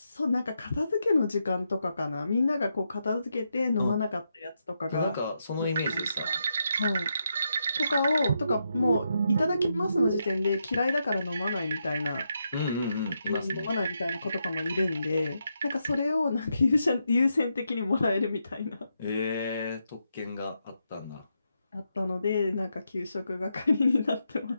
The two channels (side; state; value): both; inverted; correlation -0.83